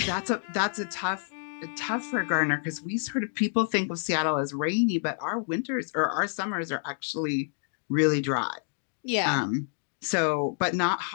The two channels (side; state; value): right; silent; 59 dB below the other